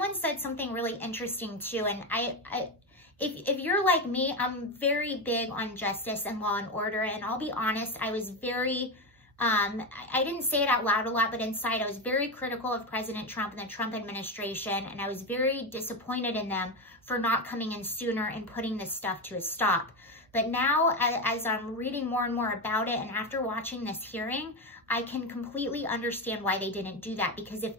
said something really interesting too. And if you're like me, I'm very big on justice and law and order. And I'll be honest, I was very, I didn't say it out loud a lot, but inside I was very critical of President Trump and the Trump administration. And I was very disappointed in them for not coming in sooner and putting this stuff to a stop. But now, as I'm reading more and more about it, and after watching this hearing, I can completely understand why they didn't do that. Because if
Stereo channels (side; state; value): both; normal; correlation 0.14